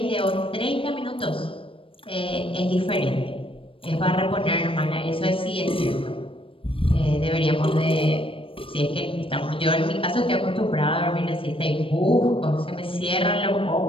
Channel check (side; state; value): right; late; 0.26 ms